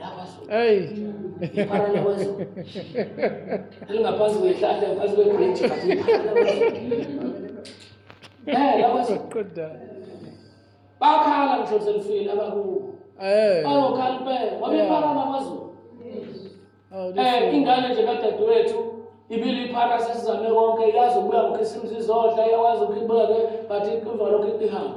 Hey. Iphara lakwaZulu. Elingaphansi kwehlahla ngaphansi kwebridge but iphara lakwaZulu. LakwaZulu. Good. Bakhala ngisho selifile abakubo. Bayokhala impela. Wabiphara lakwaZulu. Ingane nje kadadewethu ibili iphara sesizame konke yazi ukuya ngokhisimzi izodla yawazi ukubeke but iqhuvalo lokho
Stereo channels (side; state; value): both; identical; correlation 1.00